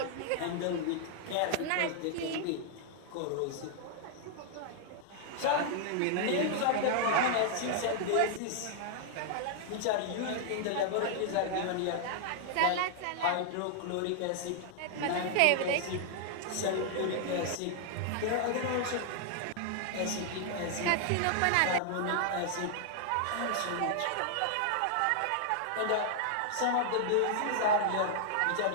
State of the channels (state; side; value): different; both; correlation -0.01